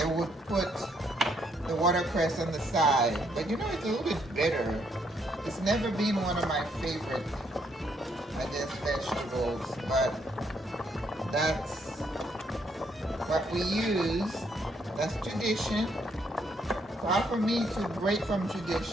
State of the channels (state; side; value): normal; both; correlation 0.72